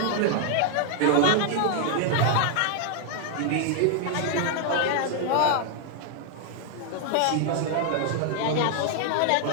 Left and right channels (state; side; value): different; both; correlation 0.00